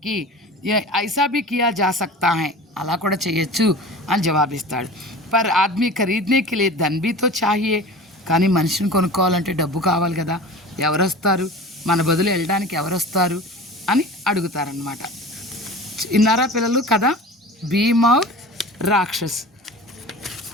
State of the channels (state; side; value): normal; both; correlation 0.36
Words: कि ये ऐसा भी किया जा सकता है, అలా కూడా చేయొచ్చు అని జవాబిస్తాడు. పర్ ఆద్మీ ఖరీదనే కే లియే ధన్ భీ తో చాహియే, కానీ మనిషిని కొనుక్కోవాలంటే డబ్బు కావాలి కదా, ఎవరు వస్తారు, మన బదులు వెళ్ళడానికి ఎవరు వస్తారు అని అడుగుతారనమాట. ఇన్నారా పిల్లలు కదా, భీమ్ ఔర్ రాక్షస్.